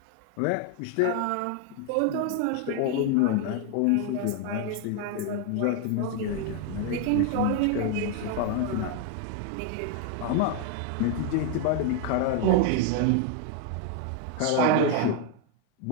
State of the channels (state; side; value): different; both; correlation 0.01